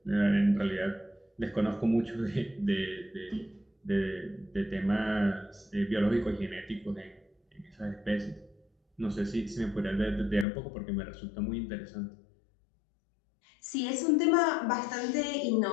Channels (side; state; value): right; drops out; at 10.5 s